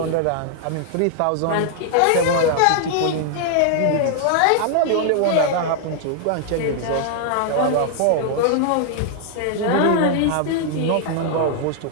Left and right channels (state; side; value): different; both; correlation 0.00